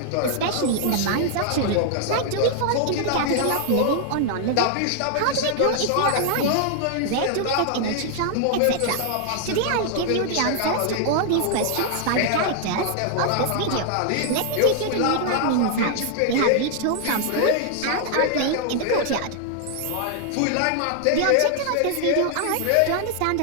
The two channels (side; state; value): both; different; correlation 0.00